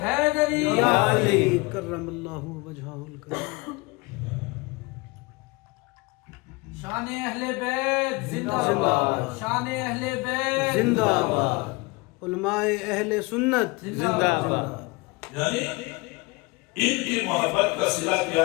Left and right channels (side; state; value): right; quieter; 25.7 dB